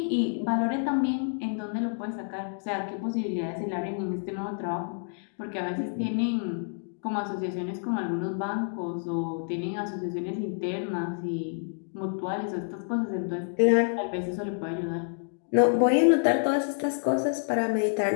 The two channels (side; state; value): right; silent; 59 dB below the other